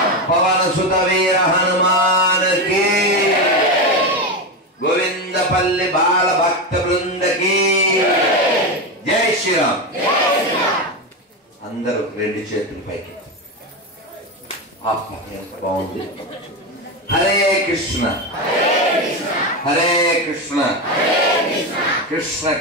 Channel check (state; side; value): normal; both; correlation 0.15